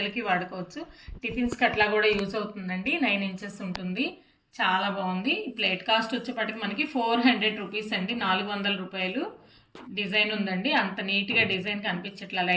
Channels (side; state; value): both; identical; correlation 1.00